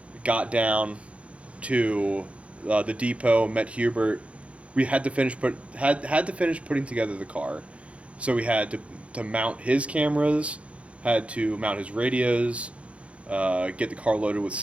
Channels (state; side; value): late; left; 0.062 ms